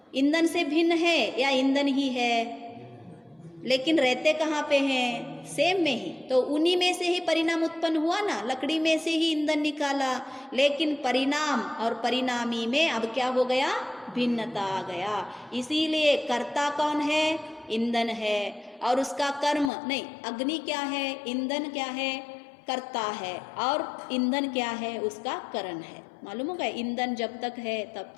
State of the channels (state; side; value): drops out; right; at 19.7 s